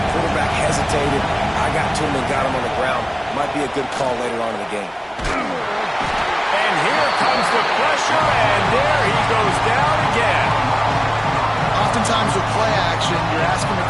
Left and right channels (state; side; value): identical; both; correlation 1.00